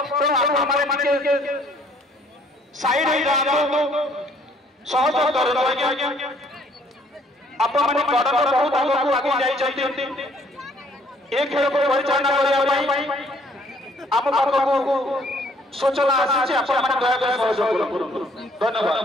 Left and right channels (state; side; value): normal; both; correlation 0.62